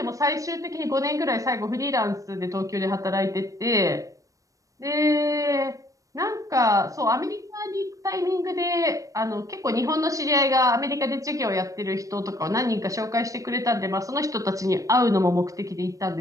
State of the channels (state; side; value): late; left; 0.16 ms